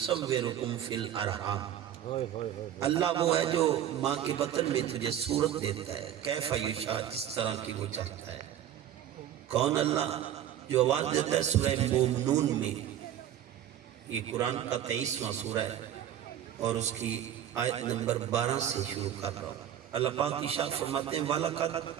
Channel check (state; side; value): quieter; left; 10.8 dB